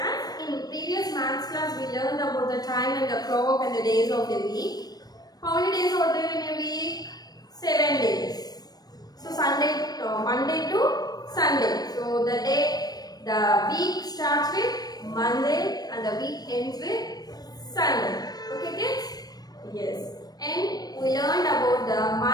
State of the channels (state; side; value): late; right; 0.19 ms